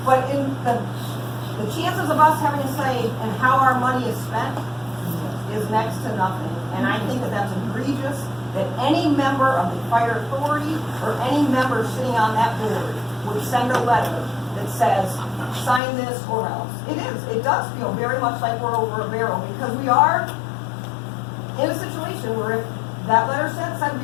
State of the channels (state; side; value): drops out; right; at 15.8 s